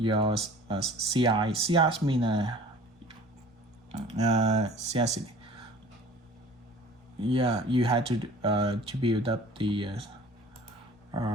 CI. CI mean CI. Yeah, you had to build up the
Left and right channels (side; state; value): both; normal; correlation 0.46